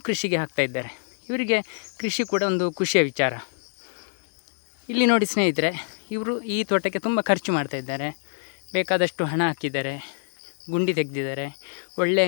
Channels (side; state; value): right; silent; digital silence